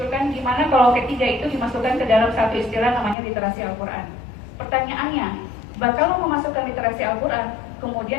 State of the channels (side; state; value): right; drops out; at 3.2 s